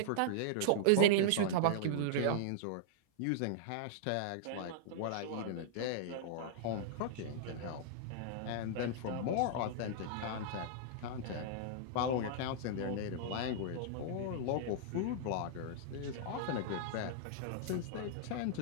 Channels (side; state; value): both; different; correlation -0.01